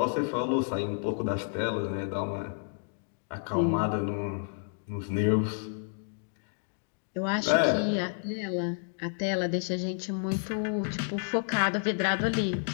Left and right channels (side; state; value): right; silent; digital silence